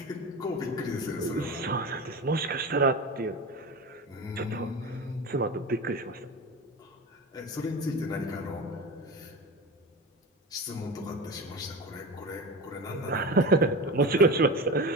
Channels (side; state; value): both; normal; correlation 0.27